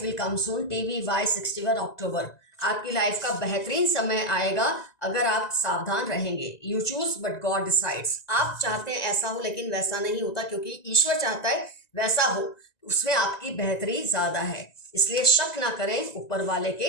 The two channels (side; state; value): right; late; 1.9 ms